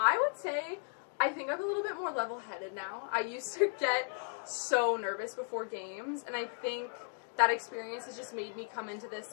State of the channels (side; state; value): right; silent; 54 dB below the other